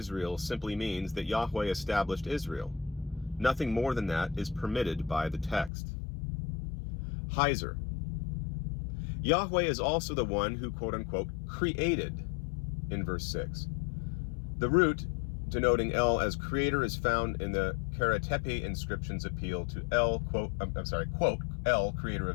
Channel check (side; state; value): right; drops out; at 5.7 s